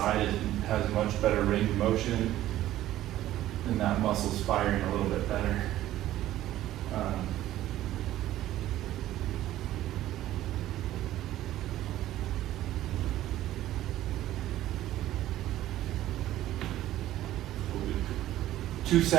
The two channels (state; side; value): quieter; left; 14.0 dB